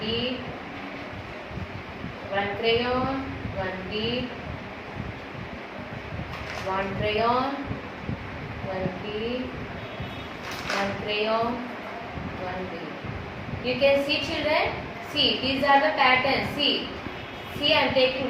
one crayon, one bead, one crayon, one bead, one crayon, one bead. You can see children? See, these are the patterns. See, I am taking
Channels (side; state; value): both; identical; correlation 1.00